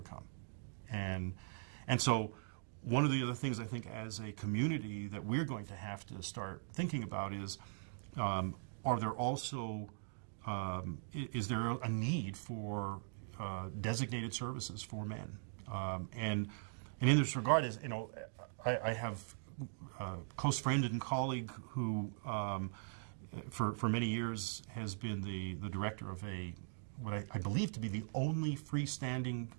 And so one of the other things I think as a community that we're going to have to start thinking about is, are there also, is there a need for designated services for men? And in this regard, is I have a close friend and colleague who, for many years, has been the director of what I believe to be the only freestanding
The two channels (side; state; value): left; silent; digital silence